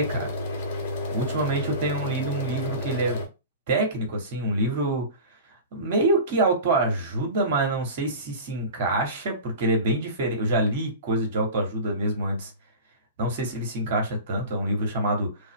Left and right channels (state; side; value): inverted; both; correlation -0.33